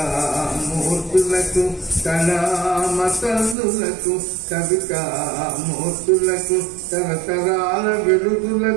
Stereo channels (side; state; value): left; drops out; at 3.6 s